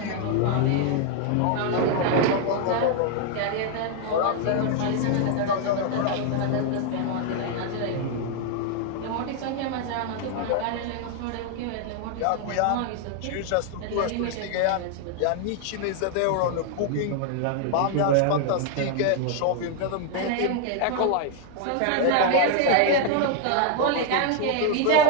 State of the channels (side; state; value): both; different; correlation 0.00